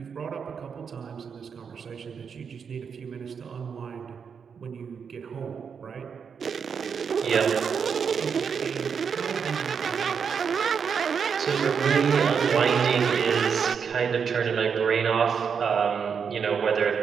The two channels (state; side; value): quieter; left; 6.5 dB